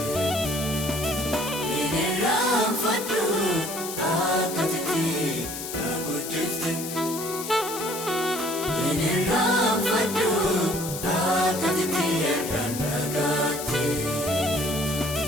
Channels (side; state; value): left; noise; hiss, 8 dB below the sound